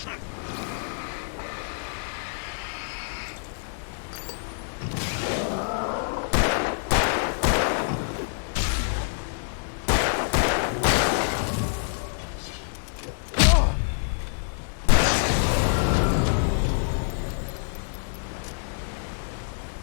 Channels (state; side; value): silent; right; digital silence